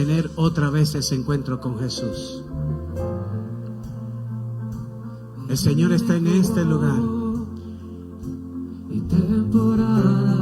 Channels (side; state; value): both; identical; correlation 1.00